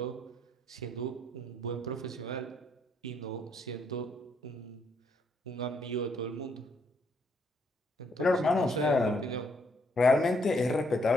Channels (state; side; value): normal; both; correlation 0.72